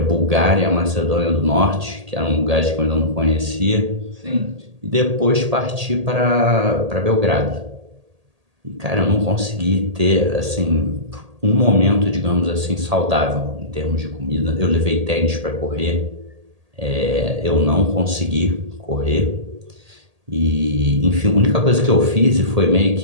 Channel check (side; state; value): left; late; 1.8 ms